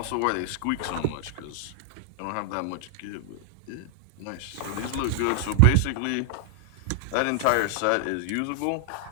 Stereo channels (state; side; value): different; both; correlation 0.00